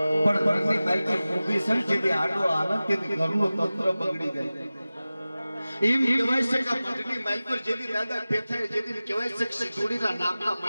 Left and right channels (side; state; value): both; inverted; correlation -0.97